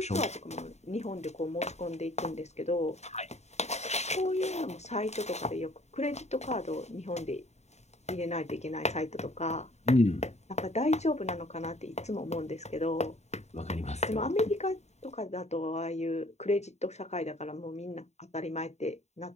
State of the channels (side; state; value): right; late; 0.32 ms